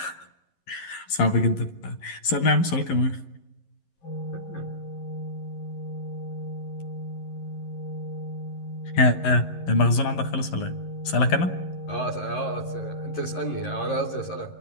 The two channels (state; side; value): late; right; 11 ms